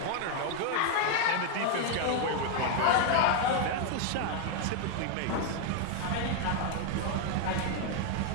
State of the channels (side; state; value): both; different; correlation 0.00